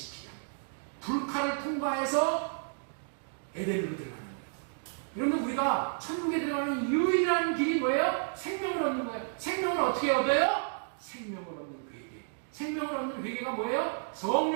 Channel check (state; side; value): silent; left; digital silence